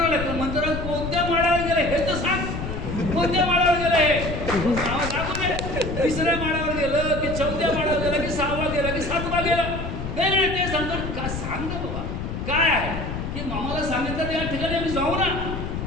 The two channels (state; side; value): noise; left; rumble, 5 dB below the sound